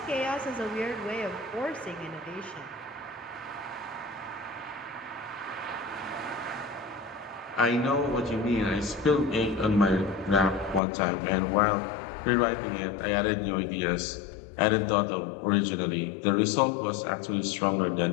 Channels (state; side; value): drops out; right; at 10.8 s